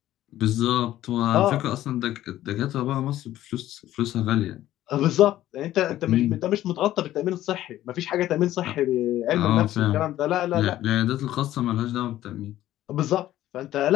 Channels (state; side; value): quieter; right; 13.7 dB